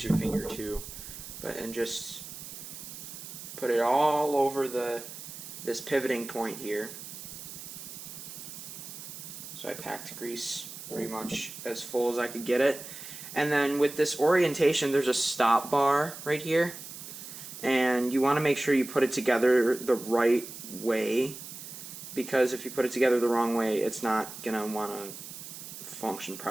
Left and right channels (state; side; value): noise; right; hiss, 12 dB below the sound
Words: your finger too, and just put it all over this pivoting point here. So I packed grease pretty much as full as I could get it. And then with this orientation, there's a stop bar right here, and you want to make sure you put it together the right way, because if you put it together the wrong way, it's not going to want to function